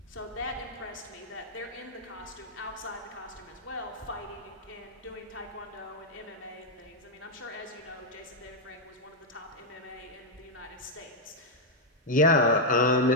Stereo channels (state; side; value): normal; both; correlation -0.01